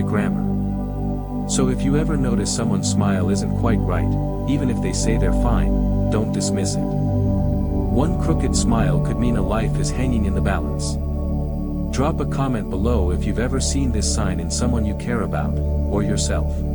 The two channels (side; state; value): both; identical; correlation 1.00